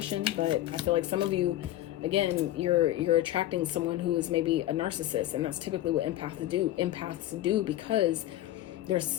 But I feel like some of you, again, you're attracting someone who is maybe a narcissist. And that's typically what empaths do because they're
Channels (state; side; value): quieter; right; 14.1 dB